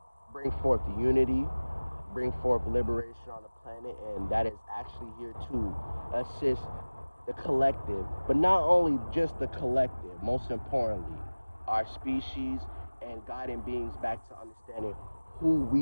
bring forth the unity, bring forth liberation on the planet, and that is actually here to assist the collective, but not only just the collective, most importantly, our species, and guiding beings back to understanding who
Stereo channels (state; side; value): inverted; both; correlation -1.00